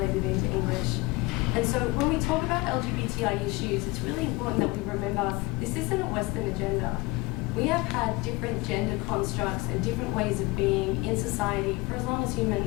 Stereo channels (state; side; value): quieter; right; 22.6 dB